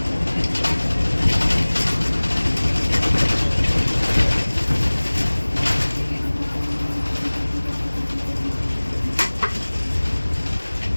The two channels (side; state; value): both; inverted; correlation -1.00